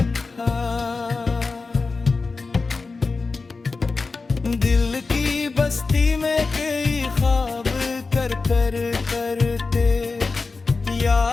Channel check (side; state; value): right; quieter; 4.1 dB